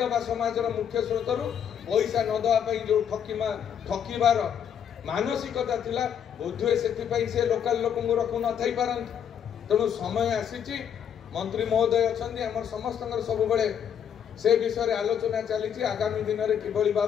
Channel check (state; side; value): quieter; right; 8.6 dB